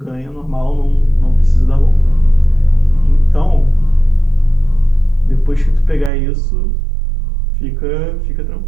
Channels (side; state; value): left; drops out; at 6.1 s